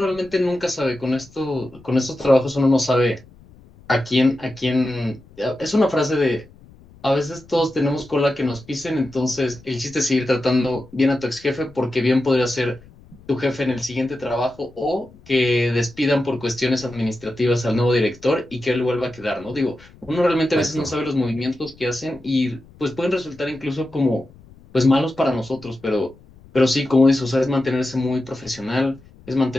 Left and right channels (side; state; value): left; noise; rumble, 24 dB below the sound